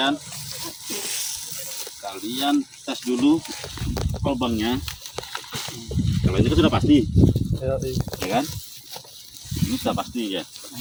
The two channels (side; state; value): both; identical; correlation 1.00